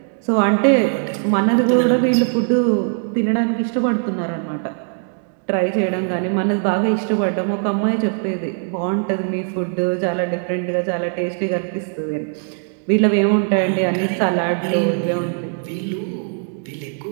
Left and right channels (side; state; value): left; silent; 56 dB below the other